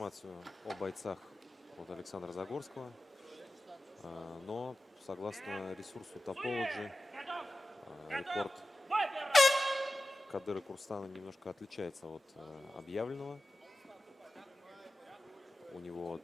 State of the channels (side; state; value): both; normal; correlation 0.93